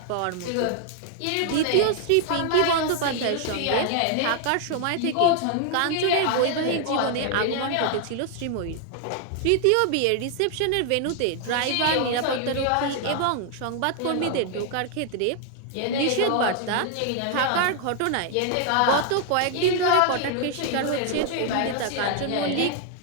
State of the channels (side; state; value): both; different; correlation 0.00